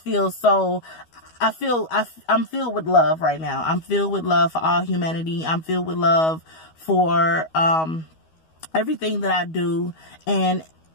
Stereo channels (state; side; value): late; right; 12 ms